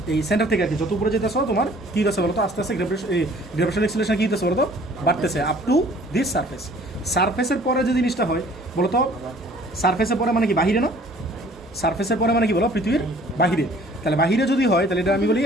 এই সেন্টার থেকে আর কি, যত উপরে যেতেছো তোমার কি হচ্ছে বলো তো? আস্তে আস্তে গ্র্যাভিটেশনাল এক্সেলারেশন কি হচ্ছে বলো তো? বাড়তেছে আপ টু দিস সারফেস। সারফেসের পরে যে জিনিসটা হয় বলো তো? সারফেসের পরে মানে কি বাহিরে না? সারফেসের পরে মানে কি বলো? পৃথিবীর বাহিরে। তাহলে বাহিরে যদি হয় তাহলে এটা আমি বলি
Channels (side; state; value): both; normal; correlation 0.53